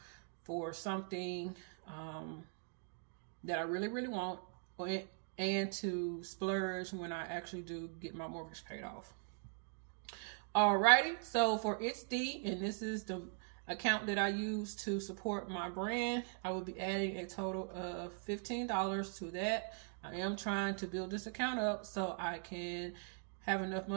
for something that I really, really want, and to splurge when I actually do get my mortgage paid off. Alrighty, so for It's D, and this is the account that I use to support my brand, I will be adding a total of $15 to that. I am trying to build this account up so I can have enough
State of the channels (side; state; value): left; silent; 51 dB below the other